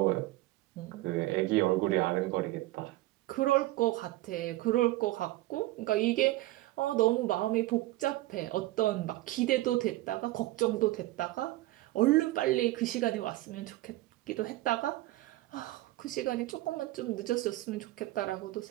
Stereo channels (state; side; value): quieter; left; 17.8 dB